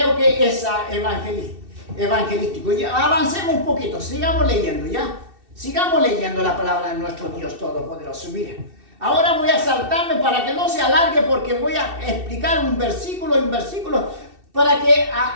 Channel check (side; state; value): left; late; 2.7 ms